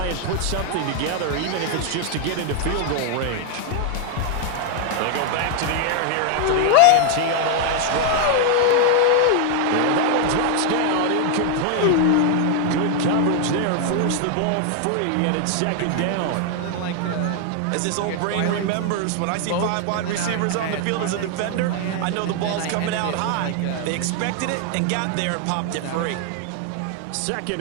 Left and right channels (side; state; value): both; different; correlation 0.00